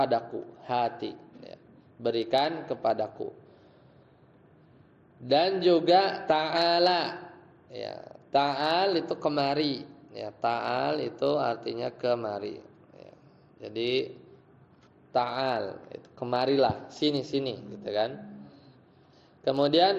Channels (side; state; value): both; identical; correlation 1.00